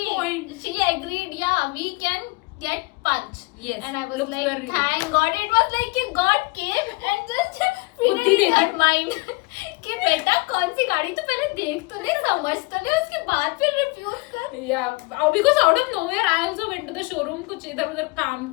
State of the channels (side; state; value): right; quieter; 26.6 dB